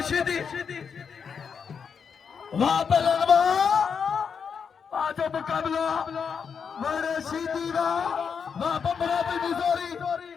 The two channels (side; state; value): right; quieter; 6.4 dB